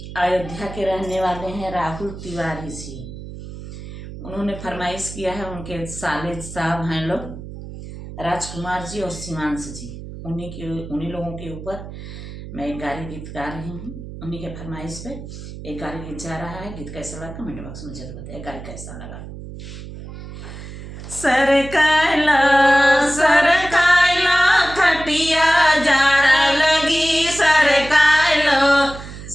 अयोध्या के रहने वाले हैं राहुल तिवारी जी। उन्होंने फरमाइश किया है, उनके साले साहब हैं लोग राजकुमार जी और शिवांश जी। उन्हीं लोगों के ऊपर मैं एक गारी गीत गा रही हूँ। उन्हीं के फरमाइश पे एक गारी गीत जा रहा है। गीत कैसा लगा कमेंट बॉक्स में जरूर बताइए। गारी कैसा लगा। सरकायला खटिया जाड़ा लगी, सरकायलो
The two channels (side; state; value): right; noise; hum, 12 dB below the sound